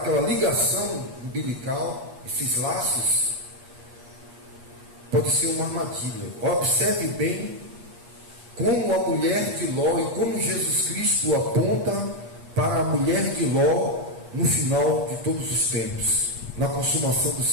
ligação umbilical, esses laços, pode ser uma armadilha. Observe bem como a mulher de Ló e como Jesus Cristo aponta para a mulher de Ló no final de todos os tempos, na consumação do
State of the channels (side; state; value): left; late; 8.3 ms